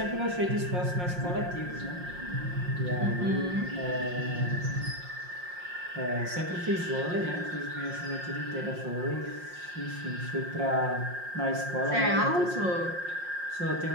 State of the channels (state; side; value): late; left; 5.6 ms